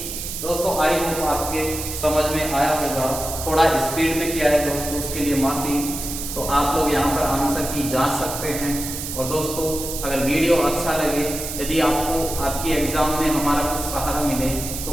दोस्तों आई होप आपके समझ में आया होगा, थोड़ा स्पीड में किया है दोस्तों, उसके लिए माफी। तो आप लोग यहाँ पर आंसर की जांच सकते हैं। और दोस्तों अगर वीडियो अच्छा लगे, यदि आपको आपके एग्जाम में हमारा कुछ सहारा मिले,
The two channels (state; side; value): noise; right; hiss, 6 dB below the sound